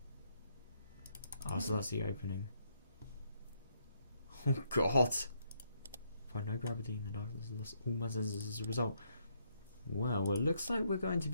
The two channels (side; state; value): both; inverted; correlation -0.74